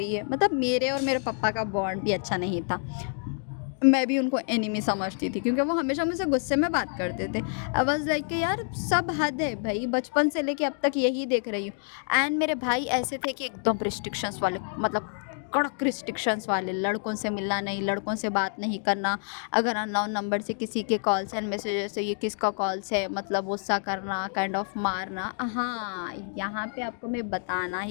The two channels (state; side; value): silent; right; 56 dB below the other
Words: है। मतलब मेरे और मेरे पापा का बॉन्ड भी अच्छा नहीं था, मैं भी उनको एनिमी समझती थी, क्योंकि वो हमेशा मुझसे गुस्से में बात करते थे। आई वाज लाइक कि यार सब हद है भाई, बचपन से लेके अब तक यही देख रही हूँ। एंड मेरे भाई ऐसे थे कि एकदम रिस्ट्रिक्शंस वाले, मतलब कड़क रिस्ट्रिक्शंस वाले, लड़कों से मिलना नहीं, लड़कों से बात नहीं करना, अगर अननोन नंबर से किसी के कॉल्स एंड मैसेजेस से ये किसका कॉल्स है मतलब गुस्सा करना, काइंड ऑफ मारना। हाँ, यहाँ पे आपको मैं बताना